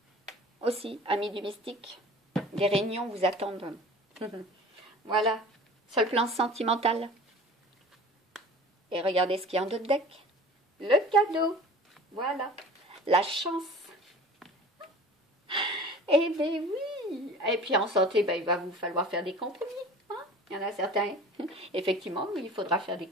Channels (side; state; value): both; normal; correlation 0.42